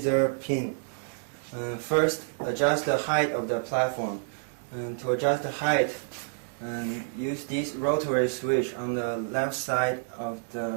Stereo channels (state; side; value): silent; left; digital silence